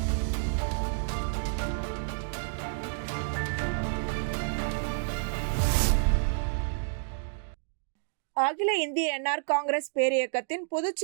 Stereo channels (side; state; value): left; silent; digital silence